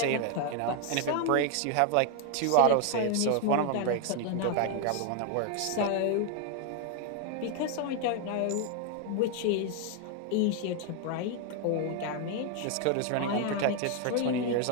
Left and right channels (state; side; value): different; both; correlation 0.01